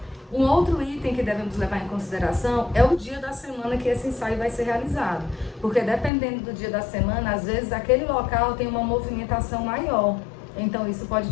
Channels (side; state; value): right; drops out; at 6.1 s